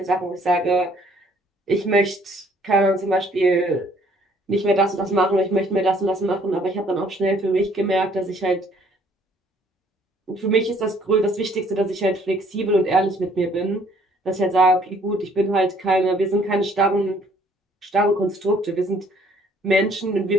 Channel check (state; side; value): normal; both; correlation 0.61